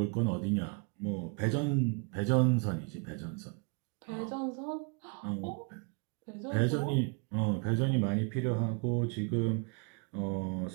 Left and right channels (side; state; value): left; quieter; 32.7 dB